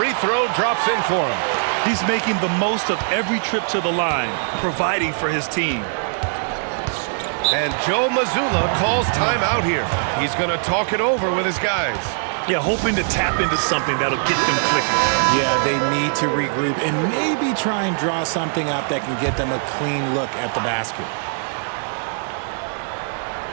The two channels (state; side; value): silent; left; 65 dB below the other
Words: throw drops in for him. He's making the most of every trip to the line, providing for his team. And Joe Mazzulla calls timeout here. He's going to talk it over with his guys. Yeah, hoping to tap into something that'll get them clicking. Yeah, they need to regroup and maybe try and draw something up that can get them a clean look at the basket.